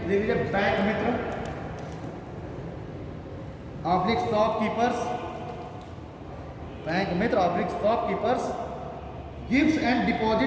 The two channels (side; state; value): both; identical; correlation 1.00